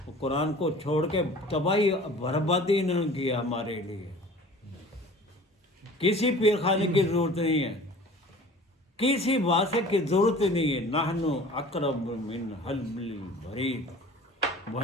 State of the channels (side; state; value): both; normal; correlation 0.44